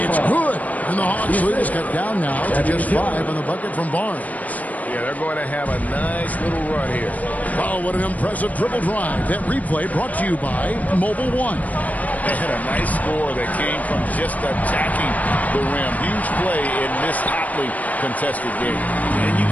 It's good. And the Hawks lead is cut down now to just 5 on the bucket from Barnes. Yeah, they're going to have a nice little run here. Wow, what an impressive dribble drive. That replay brought to you by Mobile One. They had a nice score that came from just attacking the rim. Huge play in this hotly contested game. And you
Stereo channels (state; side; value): late; right; 0.073 ms